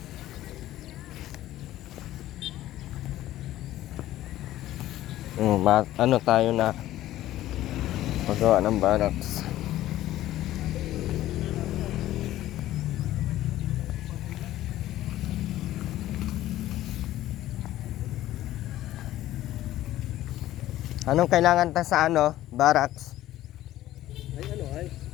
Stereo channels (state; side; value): quieter; right; 14.4 dB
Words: Ano tayo na paggawa ng barracks. Anong kailangan ta sa barracks? Ay